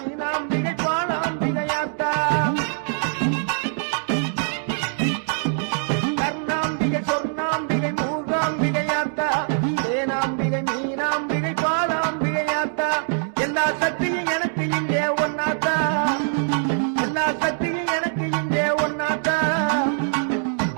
பாலாம்பிகையாத்தா கருணாம்பிகை சொர்ணாம்பிகை மூகாம்பிகையாத்தா தேனாம்பிகை மீனாம்பிகை பாலாம்பிகையாத்தா எல்லா சக்தியும் எனக்கு இங்கே ஒன்னாத்தா எல்லா சக்தியும் எனக்கு இங்கே ஒன்னாத்தா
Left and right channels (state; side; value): silent; left; digital silence